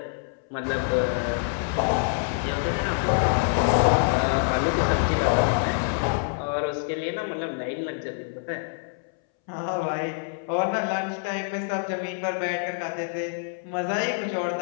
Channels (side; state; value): right; silent; 61 dB below the other